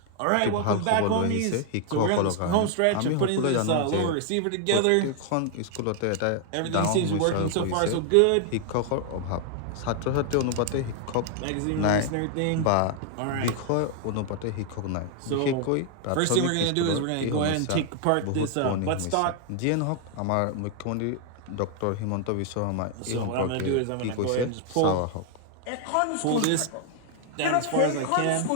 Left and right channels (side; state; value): both; different; correlation 0.00